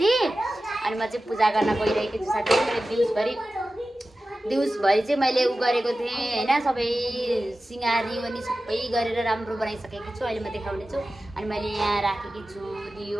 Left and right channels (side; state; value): both; normal; correlation 0.95